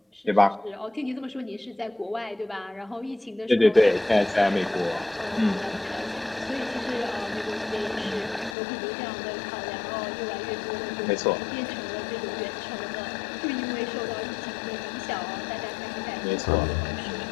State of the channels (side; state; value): right; drops out; at 8.6 s